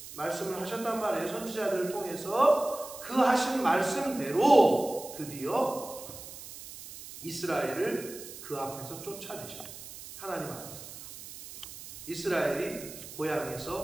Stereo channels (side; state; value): right; noise; hiss, 13 dB below the sound